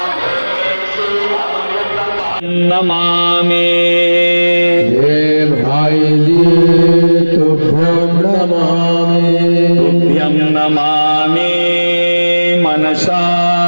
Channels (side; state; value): both; inverted; correlation -1.00